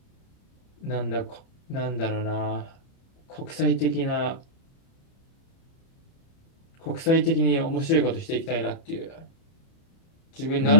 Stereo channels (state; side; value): late; right; 30 ms